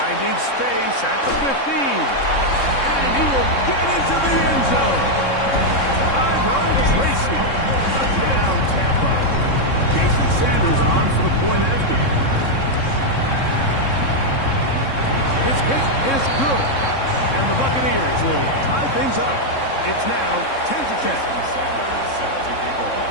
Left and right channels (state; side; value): late; right; 3.7 ms